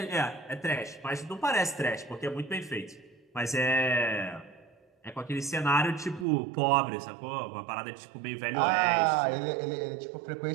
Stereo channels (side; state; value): left; drops out; at 6.2 s